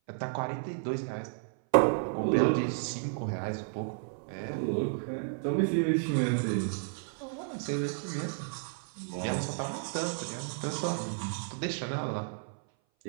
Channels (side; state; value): left; silent; 56 dB below the other